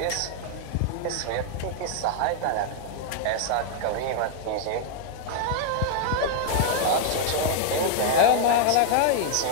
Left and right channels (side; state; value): both; different; correlation 0.00